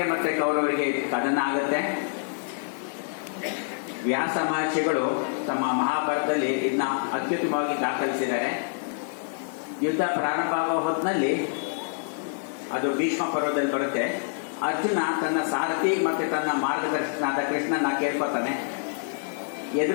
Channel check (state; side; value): silent; right; digital silence